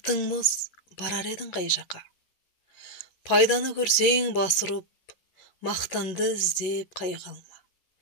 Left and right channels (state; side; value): late; right; 11 ms